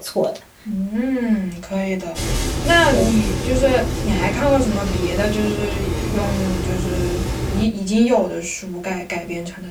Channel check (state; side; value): identical; both; correlation 1.00